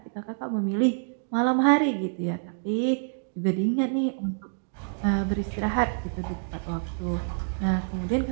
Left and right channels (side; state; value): left; silent; digital silence